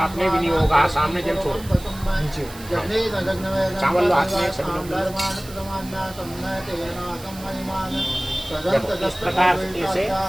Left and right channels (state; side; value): noise; right; hiss, 17 dB below the sound